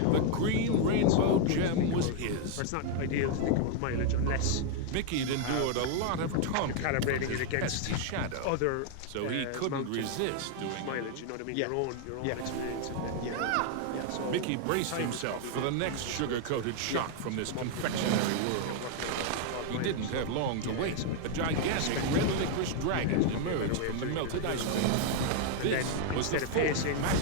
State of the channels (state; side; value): different; both; correlation 0.00